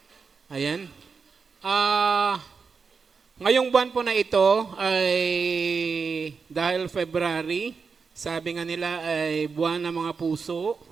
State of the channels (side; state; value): left; quieter; 5.3 dB